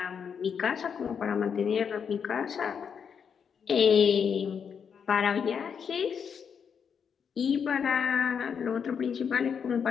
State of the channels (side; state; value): right; quieter; 7.0 dB